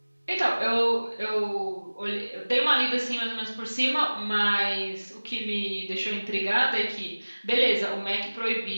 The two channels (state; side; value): inverted; both; correlation -1.00